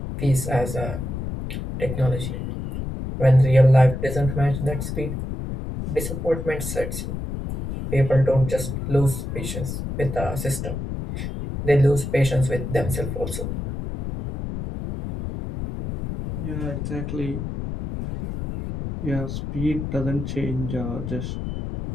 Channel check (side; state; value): left; noise; rumble, 5 dB below the sound